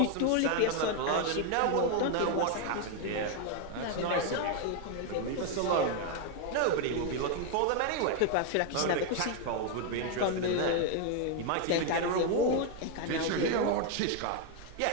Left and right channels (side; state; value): both; different; correlation 0.01